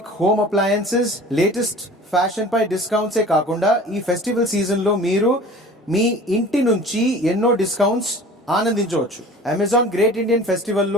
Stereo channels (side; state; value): both; normal; correlation 0.43